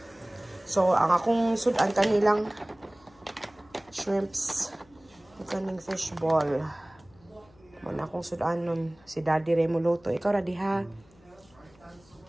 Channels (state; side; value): noise; left; hum, 29 dB below the sound